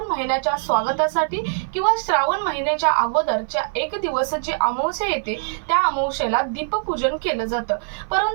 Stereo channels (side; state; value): left; silent; 56 dB below the other